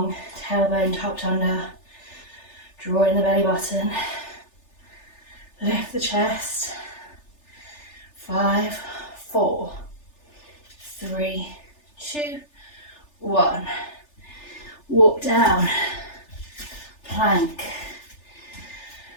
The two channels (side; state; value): right; late; 3.4 ms